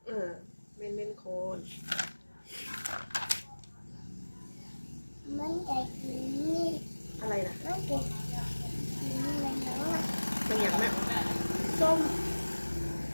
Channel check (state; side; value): inverted; both; correlation -1.00